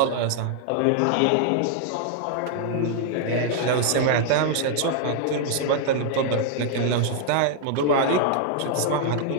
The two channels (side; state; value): both; different; correlation -0.01